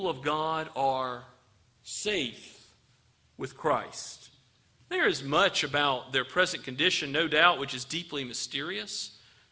of God are safe with Christ. There is much about their present condition, no doubt, which is deeply mysterious.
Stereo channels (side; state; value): both; identical; correlation 1.00